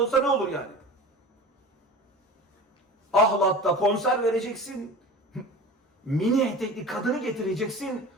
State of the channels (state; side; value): normal; both; correlation 0.36